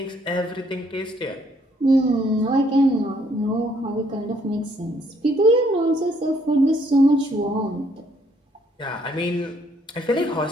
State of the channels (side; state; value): both; normal; correlation 0.67